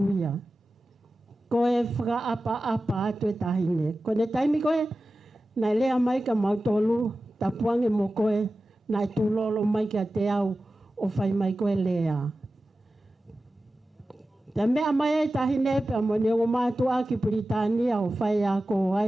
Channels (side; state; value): both; normal; correlation 0.94